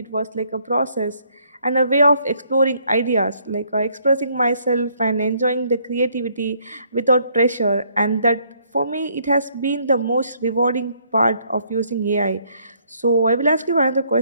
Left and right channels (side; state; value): both; inverted; correlation -0.67